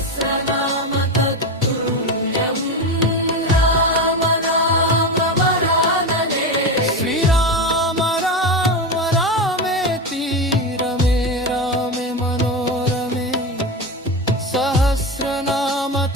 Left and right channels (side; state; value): both; normal; correlation 0.19